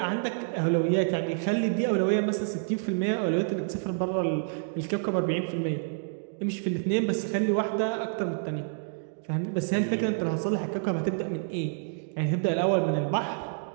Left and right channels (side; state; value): left; silent; digital silence